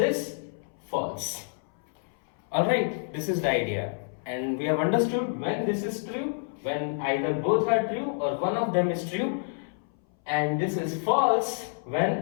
false. Alright, this is the idea, and we have understood when this is true, when either both are true or one of them is true, and this is false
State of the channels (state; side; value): silent; right; 59 dB below the other